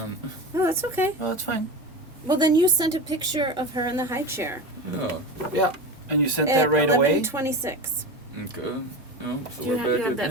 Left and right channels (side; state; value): both; normal; correlation 0.26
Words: oh, that's okay. Oh, that's fine. Well, then you sent a picture of her in the high chair. Yeah. Yeah. And you sent At that right away? 11:26. Okay. Yeah. So Do you we're have- back you have at